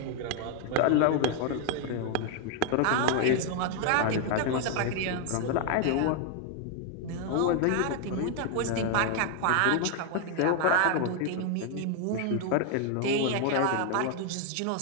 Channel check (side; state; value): both; different; correlation 0.00